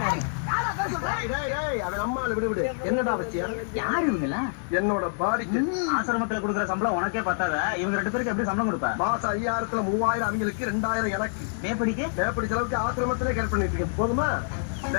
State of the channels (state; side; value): silent; right; digital silence